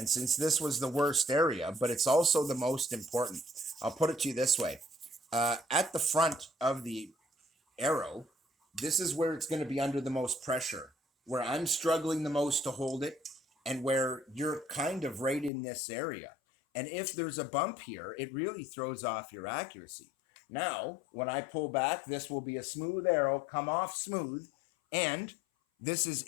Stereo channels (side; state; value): right; drops out; at 15.5 s